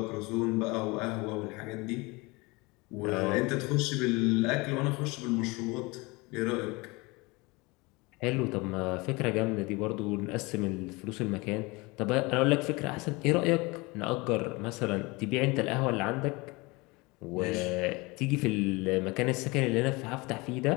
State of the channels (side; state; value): right; quieter; 24.9 dB